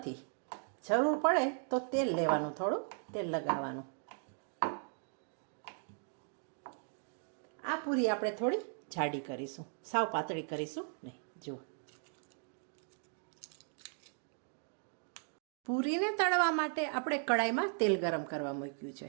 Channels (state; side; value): silent; left; 53 dB below the other